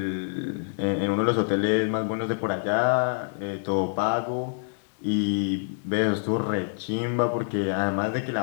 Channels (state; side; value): silent; right; 61 dB below the other